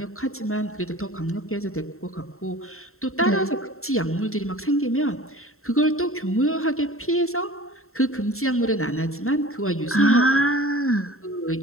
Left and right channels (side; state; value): right; late; 0.62 ms